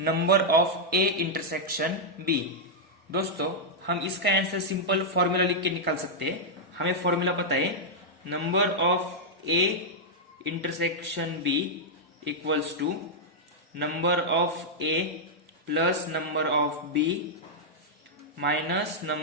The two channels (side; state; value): both; normal; correlation -0.06